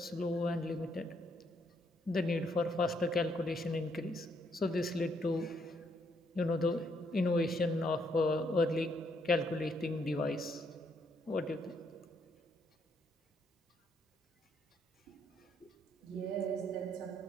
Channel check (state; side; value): normal; both; correlation 0.73